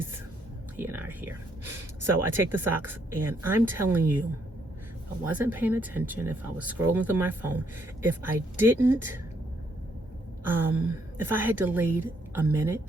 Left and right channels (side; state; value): both; normal; correlation 0.72